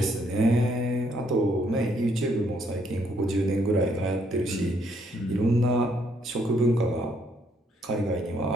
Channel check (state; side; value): normal; both; correlation 0.70